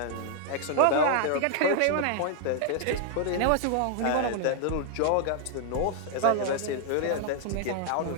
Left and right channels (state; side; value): different; both; correlation 0.00